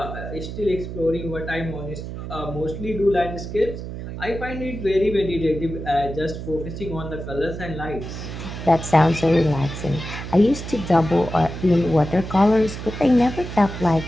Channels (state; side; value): noise; right; hum, 8 dB below the sound